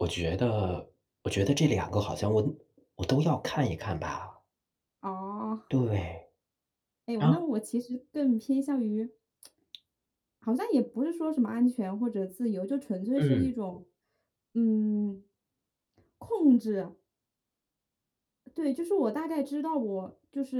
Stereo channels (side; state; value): both; identical; correlation 1.00